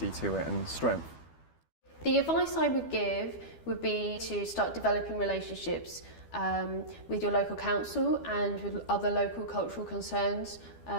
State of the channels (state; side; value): late; right; 12 ms